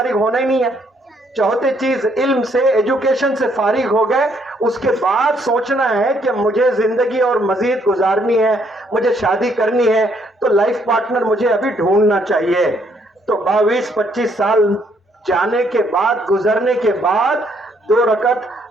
ہونا ہی نہیں ہے، چوتھی چیز علم سے، ایجوکیشن سے فارغ ہو گئے، اس کے بعد سوچنا ہے کہ مجھے زندگی اور مزید گزارنی ہے، مجھے شادی کرنی ہے، تو لائف پارٹنر مجھے ابھی ڈھونڈنا چاہیے۔ تو 22-25 سال جانے کے بعد، گزرنے کے بعد 2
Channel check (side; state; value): both; normal; correlation 0.69